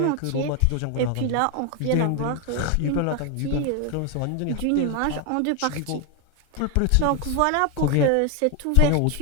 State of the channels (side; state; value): both; different; correlation 0.01